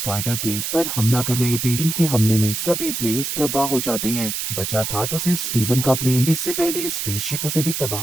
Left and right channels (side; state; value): right; noise; hiss, 3 dB below the sound